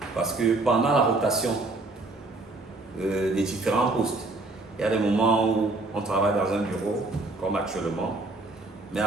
parce que pendant la rotation des différents postes, il y a des moments où on travaille dans un bureau, comme actuellement, mais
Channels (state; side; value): quieter; left; 3.1 dB